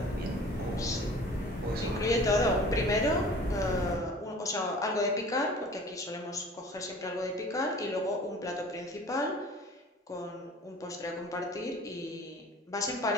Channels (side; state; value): both; normal; correlation 0.45